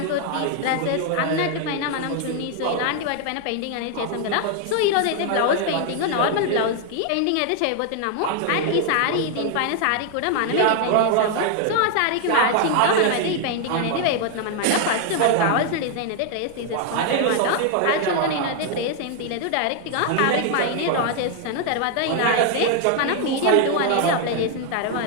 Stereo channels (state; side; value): different; both; correlation 0.00